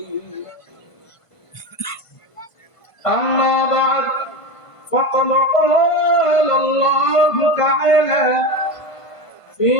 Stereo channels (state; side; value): late; right; 1.5 ms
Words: أما بعد، فقد قال الله تعالى في